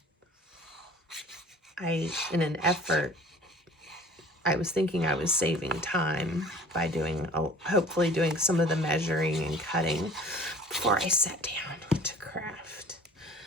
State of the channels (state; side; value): normal; both; correlation 0.47